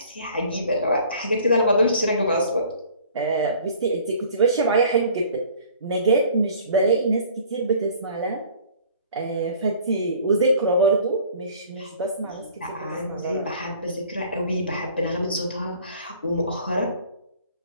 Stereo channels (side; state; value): both; inverted; correlation -0.51